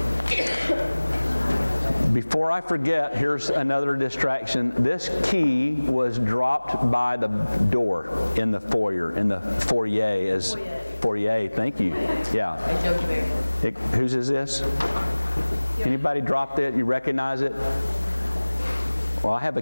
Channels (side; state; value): both; inverted; correlation -1.00